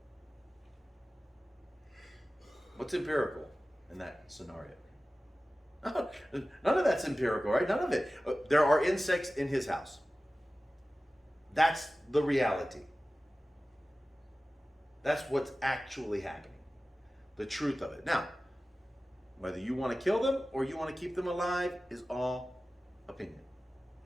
What's empirical in that scenario? None of that's empirical, right? None of it. There are insects in his house. That's the reality. That's what's actually happening. The truth of it. Now, whether you want to kill them or you want to keep them alive is all opinion.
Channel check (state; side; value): normal; both; correlation 0.96